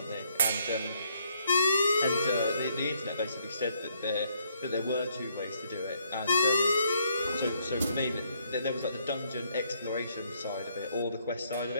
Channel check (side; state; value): both; inverted; correlation -0.71